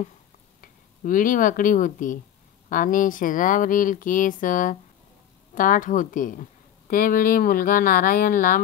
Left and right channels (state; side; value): quieter; right; 10.5 dB